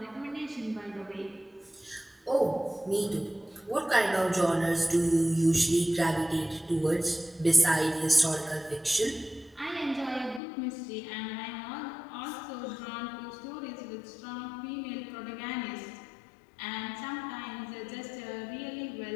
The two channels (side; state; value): right; drops out; at 10.4 s